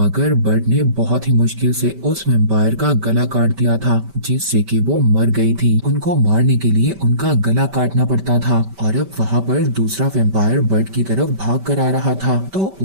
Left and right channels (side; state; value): left; late; 5.2 ms